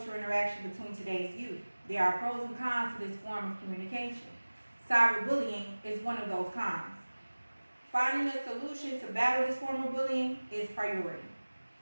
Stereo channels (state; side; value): inverted; both; correlation -1.00